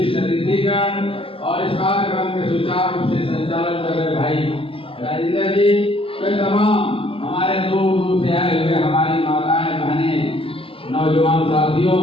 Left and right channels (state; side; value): late; right; 0.26 ms